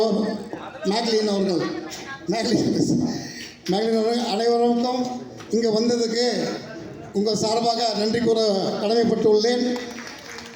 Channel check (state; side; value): identical; both; correlation 1.00